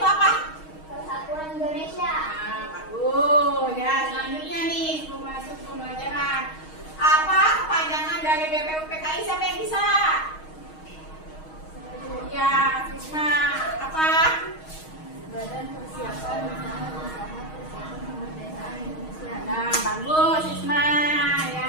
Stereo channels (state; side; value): late; right; 6.4 ms